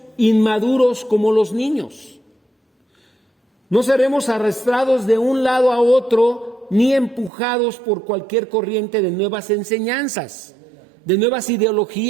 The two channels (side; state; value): left; drops out; at 7.3 s